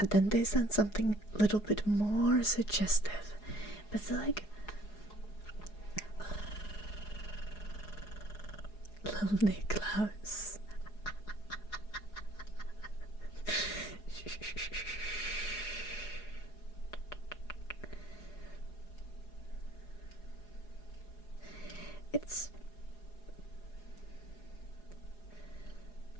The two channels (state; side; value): late; right; 4.8 ms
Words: then they send something a little bit more suggestive, but it's like little Niklaus.